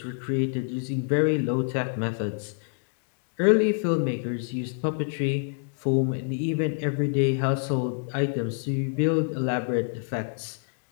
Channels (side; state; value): right; silent; digital silence